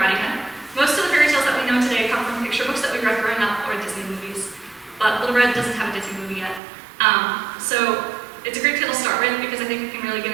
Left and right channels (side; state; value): left; drops out; at 6.6 s